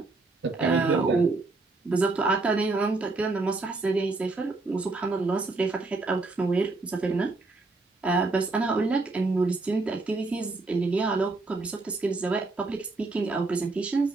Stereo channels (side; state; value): left; quieter; 3.4 dB